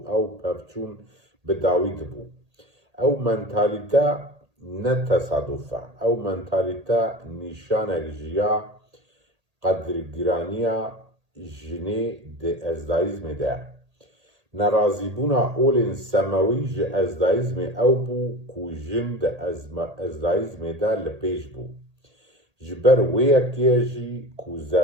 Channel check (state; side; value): late; left; 1.8 ms